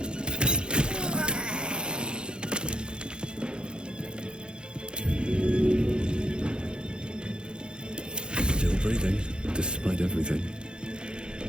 Still breathing, despite everything.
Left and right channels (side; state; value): left; late; 0.050 ms